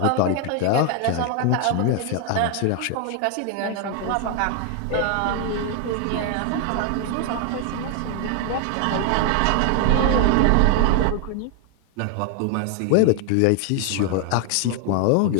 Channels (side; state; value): both; different; correlation 0.01